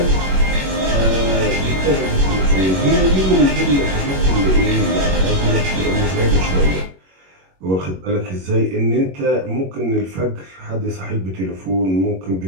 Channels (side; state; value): left; late; 21 ms